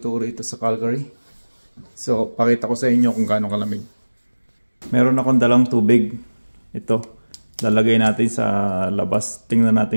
rito sa Calgary. So pakita ko sa inyo kung gaano kalamig. Meron akong dalang tubig. Ito, lalagay natin sa labas. Tingnan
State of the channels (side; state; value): both; inverted; correlation -1.00